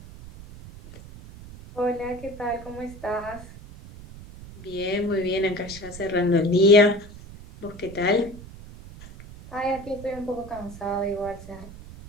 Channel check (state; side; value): noise; right; rumble, 16 dB below the sound